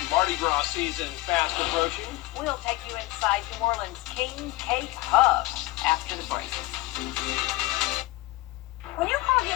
Mardi Gras season fast approaching. We'll take you inside New Orleans' King Cake Hub after the break. When you call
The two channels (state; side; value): quieter; right; 19.7 dB